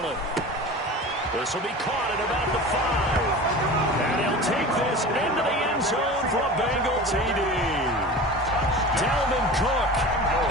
This will be caught at about the 5. And he'll take this into the end zone for a Bengal TD. Dalvin Cook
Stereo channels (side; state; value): both; normal; correlation 0.34